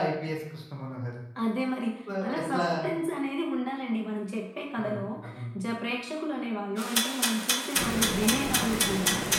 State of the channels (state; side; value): identical; both; correlation 1.00